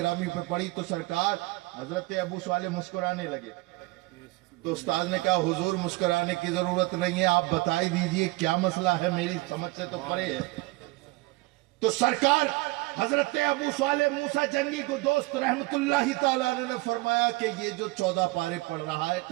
پہ پڑی تو سرکار حضرت ابو صالح مسکرانے لگے. تو استاذ نے کہا حضور مسکرانے کی ضرورت نہیں ہے، آپ بتائی دیجئے کیا مسئلہ ہے، میری سمجھ سے تو پرے ہے. تو سرکار حضرت ابو صالح موسیٰ جنگی کو دوست رحمت اللہ تعالیٰ نے فرمایا کہ یہ جو 14 پارے پڑھ رہا ہے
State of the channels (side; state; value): left; quieter; 23.1 dB